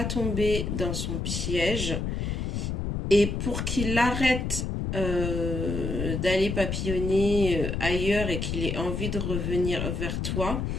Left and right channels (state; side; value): noise; left; rumble, 2 dB below the sound